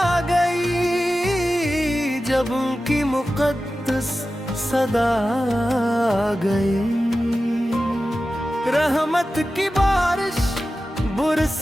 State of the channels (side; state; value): both; normal; correlation 0.94